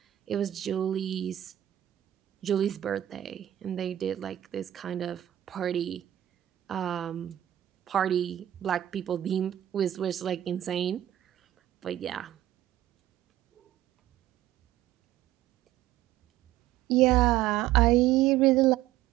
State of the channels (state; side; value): quieter; left; 12.9 dB